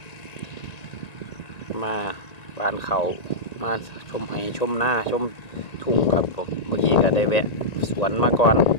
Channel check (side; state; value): right; late; 1.8 ms